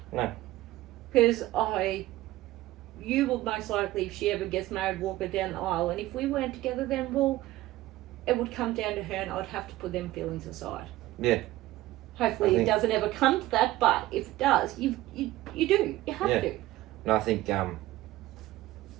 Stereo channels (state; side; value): quieter; left; 16.6 dB